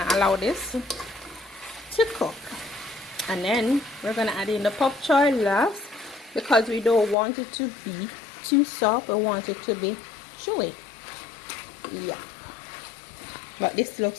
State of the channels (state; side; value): drops out; right; at 7.2 s